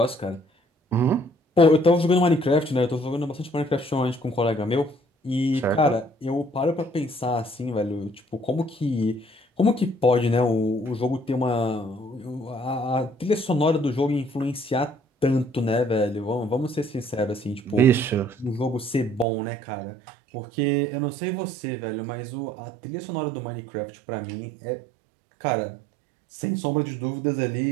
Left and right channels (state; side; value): drops out; left; at 19.2 s